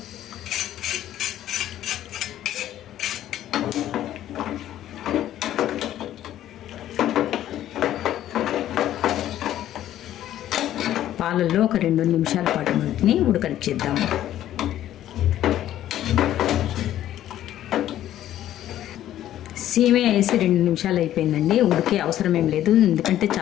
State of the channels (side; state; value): right; quieter; 12.4 dB